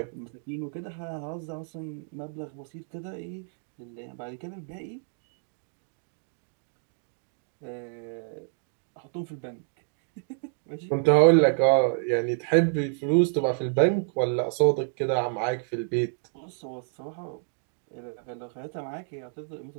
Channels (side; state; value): left; silent; 59 dB below the other